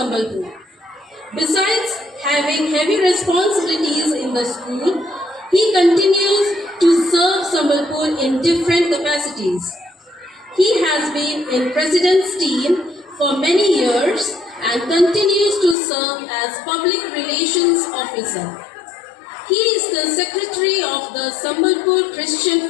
Besides having heavy responsibilities in the school, he continues to serve Sambalpur in different capacities. He has been in President's team for many years and continues to serve as Public Relations Officer. He is the Secretary of the Sambalpur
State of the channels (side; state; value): right; drops out; at 15.8 s